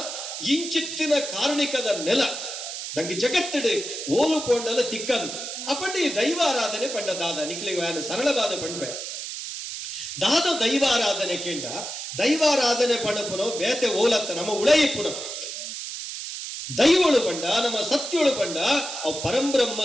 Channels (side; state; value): right; noise; hiss, 7 dB below the sound